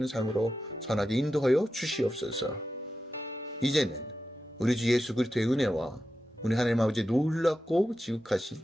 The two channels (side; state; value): both; normal; correlation 0.90